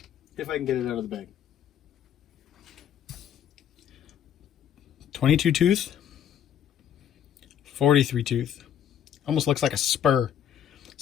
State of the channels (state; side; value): quieter; right; 9.6 dB